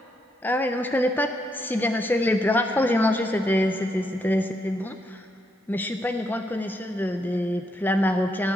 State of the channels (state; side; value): normal; both; correlation 0.78